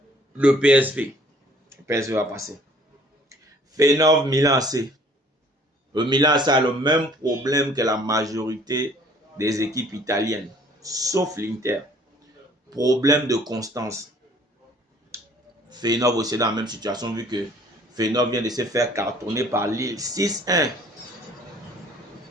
le PSV. Le PSV va passer. Feyenoord Milan AC. Le Milan AC a le même problème que la majorité des équipes italiennes, sauf l'Inter. Problème de constance. Feyenoord aussi est dans la même situation vu que Feyenoord vient de se faire cartonner par Lille 6-1.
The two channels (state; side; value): normal; both; correlation 0.56